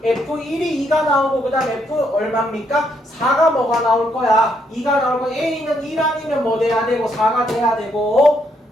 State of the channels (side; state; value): both; normal; correlation 0.74